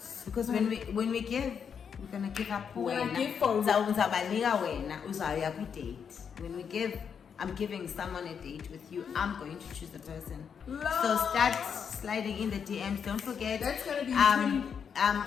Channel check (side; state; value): right; quieter; 7.1 dB